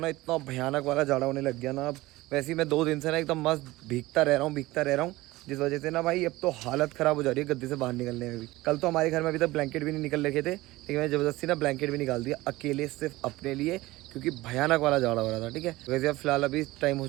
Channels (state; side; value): quieter; left; 18.9 dB